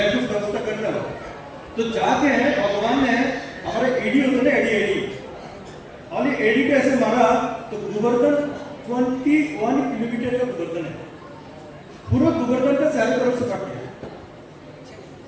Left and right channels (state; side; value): identical; both; correlation 1.00